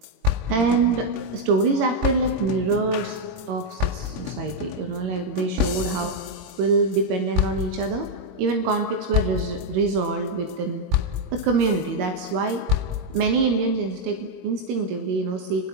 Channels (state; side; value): late; left; 22 ms